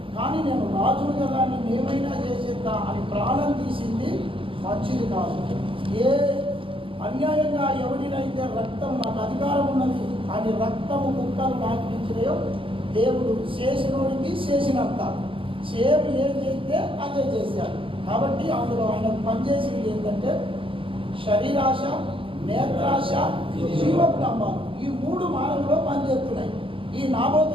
కానీ నేను రాజును కదా నేను ఏమైనా చేసేద్దా అని ప్రాణం తీసింది మంచిది కాదు. ఏ అన్యాయంగా ఎవరినైతే రక్తం నాకు అధికారం ఉన్నది అని రక్తము ముక్కలు నాకు ఇచ్చినాయో దేవుడు చేసినోడికి చేసినంత సేమ్ ఏం చేస్తే అదే చేశాడు. కాబట్టి అందులో ఆయన పనిచేసింది ఏంటంటే శరీరాశ, నేత్రాశ, జీవపు డంబాలు, ఈ 3 మార్గంలో పనిచేస్తున్నాయి. ఈ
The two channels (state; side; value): late; left; 0.25 ms